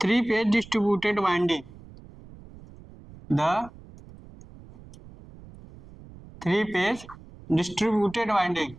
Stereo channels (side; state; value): right; noise; rumble, 20 dB below the sound